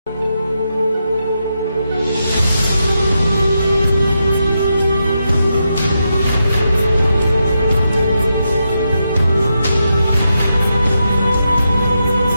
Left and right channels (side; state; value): both; inverted; correlation -0.85